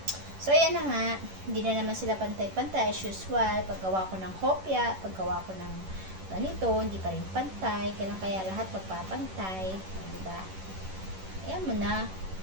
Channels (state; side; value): late; left; 11 ms